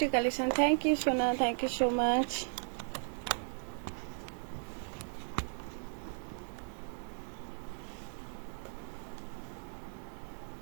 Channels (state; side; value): silent; left; 54 dB below the other